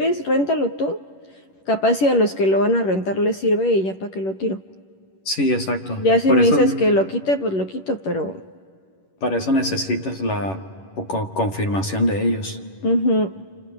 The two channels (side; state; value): right; late; 11 ms